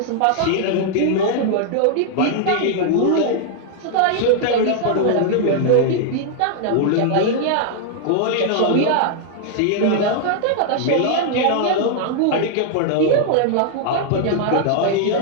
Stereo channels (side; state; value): both; different; correlation -0.01